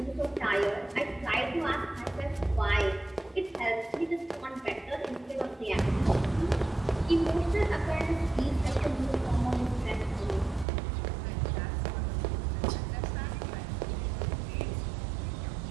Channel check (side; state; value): left; drops out; at 10.7 s